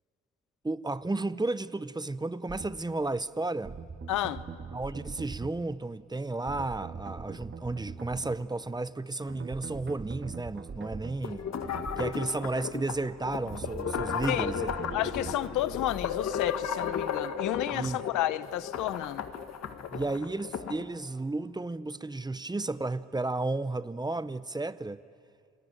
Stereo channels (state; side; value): normal; both; correlation 0.52